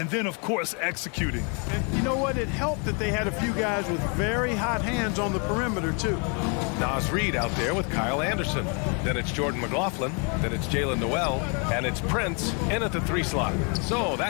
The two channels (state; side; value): quieter; right; 35.9 dB